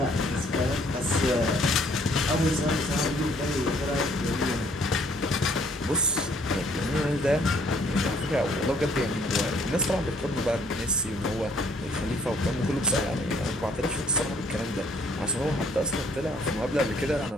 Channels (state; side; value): normal; both; correlation 0.63